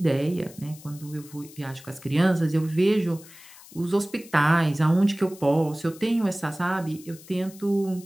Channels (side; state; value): left; noise; hiss, 20 dB below the sound